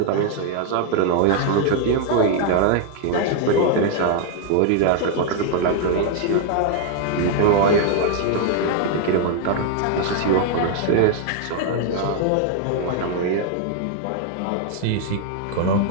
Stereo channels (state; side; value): different; both; correlation 0.00